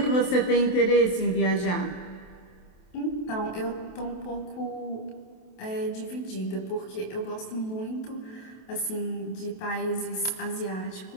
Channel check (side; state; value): right; late; 27 ms